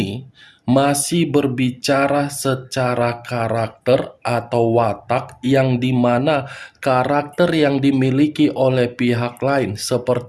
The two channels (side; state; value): both; identical; correlation 1.00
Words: masih berbicara secara karakter atau watak, yang dimana karakter yang dimiliki oleh pihak lain